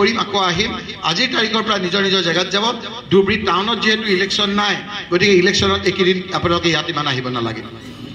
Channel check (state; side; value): identical; both; correlation 1.00